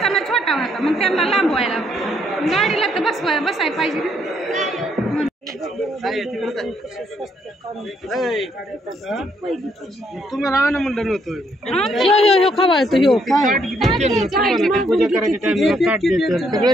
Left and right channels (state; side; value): normal; both; correlation 0.71